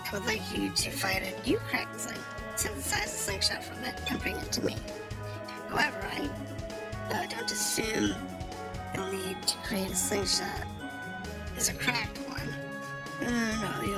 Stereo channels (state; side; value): identical; both; correlation 1.00